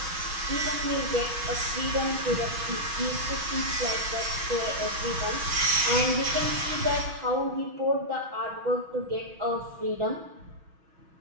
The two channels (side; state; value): left; late; 6.3 ms